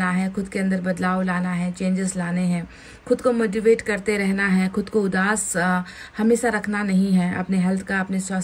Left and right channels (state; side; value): identical; both; correlation 1.00